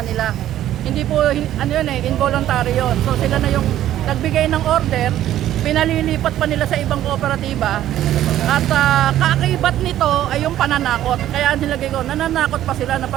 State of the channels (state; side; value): quieter; left; 12.5 dB